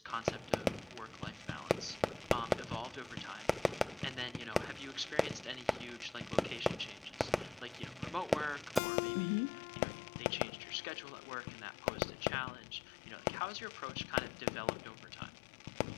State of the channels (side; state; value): right; drops out; at 8.8 s